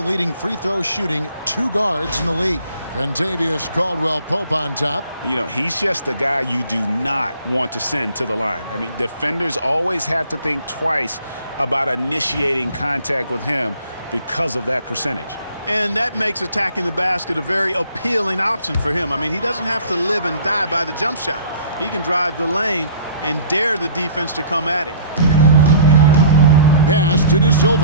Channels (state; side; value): inverted; both; correlation -0.51